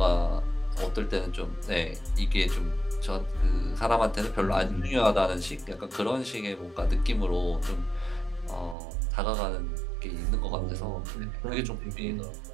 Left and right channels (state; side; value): drops out; left; at 8.8 s